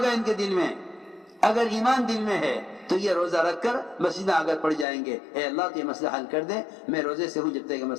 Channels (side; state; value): right; drops out; at 4.9 s